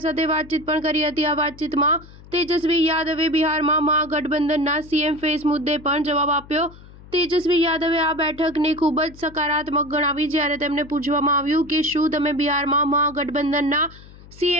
સાથે વાતચીત પણ કરી હતી। આ વાતચીતમાં તેજસ્વી યાદવે બિહારમાં મહાગઠબંધનના સીએમ ફેસ મુદ્દે પણ જવાબ આપ્યો। તેજસ્વી યાદવે આ બેઠકને ખૂબ જ સકારાત્મક ગણાવી। જ્યારે તેમને પૂછવામાં આવ્યું કે શું તમે બિહારમાં મહાગઠબંધનના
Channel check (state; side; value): noise; left; hum, 20 dB below the sound